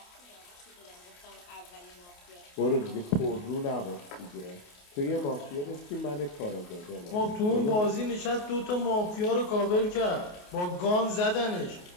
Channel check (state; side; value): late; right; 28 ms